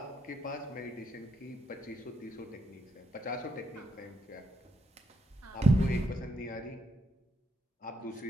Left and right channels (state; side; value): normal; both; correlation 0.79